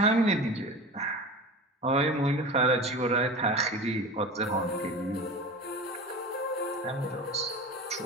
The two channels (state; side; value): normal; both; correlation 0.32